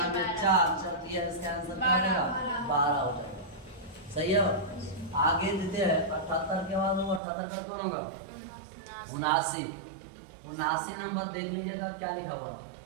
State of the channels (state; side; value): drops out; left; at 7.2 s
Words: में 4 चलती है, इसका आंसर क्या हो जाएगा, 12 हो जाएगा। सही है। आगे देते हैं 78 के बाद वो 78 का कौन होगा, 79 नंबर देख लीजिएगा क्या लिखा हुआ।